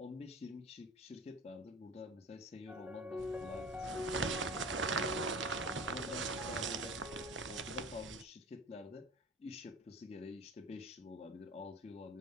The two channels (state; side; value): normal; both; correlation 0.37